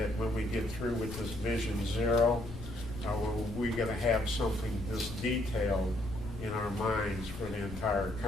when we get through with this Vision Zero, we're going to have something this detailed in our minds for the entire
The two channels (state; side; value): noise; left; rumble, 12 dB below the sound